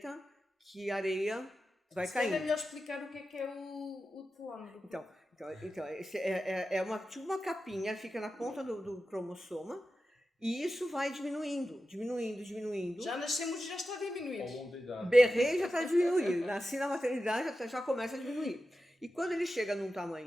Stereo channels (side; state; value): both; normal; correlation 0.92